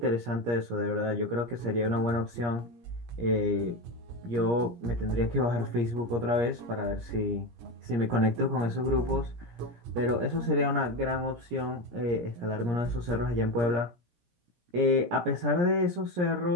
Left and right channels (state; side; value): late; left; 17 ms